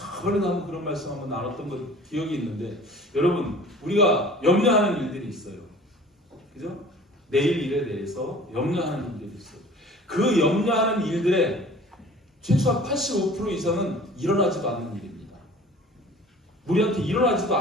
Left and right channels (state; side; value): normal; both; correlation 0.46